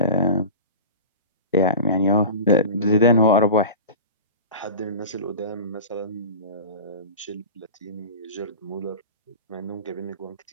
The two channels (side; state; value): both; inverted; correlation -0.32